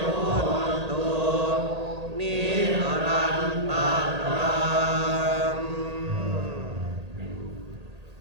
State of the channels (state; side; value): late; left; 1.8 ms